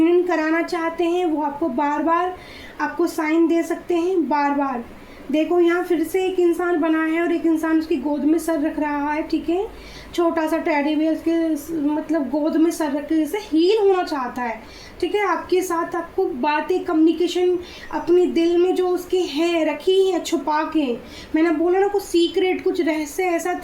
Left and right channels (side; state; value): both; identical; correlation 1.00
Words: कराना चाहते हैं, वो आपको बार बार आपको साइन दे सकते हैं, बार बार। देखो यहाँ फिर से एक इंसान बना है और एक इंसान उसकी गोद में सर रख रहा है, ठीक है। छोटा सा टेडी बियर उसके मतलब गोद में सर रख के जैसे हील होना चाहता है, ठीक है। आपके साथ आपको बातें, कम्युनिकेशन अपने दिल में जो उसके हैं रखी हैं छुपा के, मैंने बोला ना कुछ सीक्रेट, कुछ रहस्य ऐसा